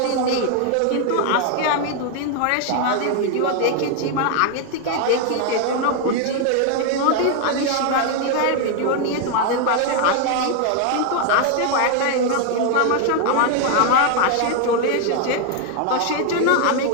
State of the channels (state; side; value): different; both; correlation 0.00